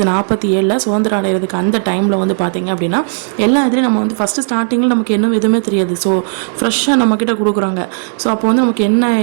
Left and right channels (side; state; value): left; silent; digital silence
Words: சுதந்திரம் அடைகிறதுக்கு அந்த டைமில் வந்து பார்த்திங்க அப்படின்னா எல்லா இதுலேயும் நம்ம வந்து ஃபஸ்ட்டு ஸ்டார்டிங்கில் நமக்கு இன்னும் எதுவுமே தெரியாது. ஸோ ஃப்ரெஷ்ஷாக நம்மக்கிட்ட கொடுக்குறாங்க. ஸோ அப்போ வந்து நமக்கு என்ன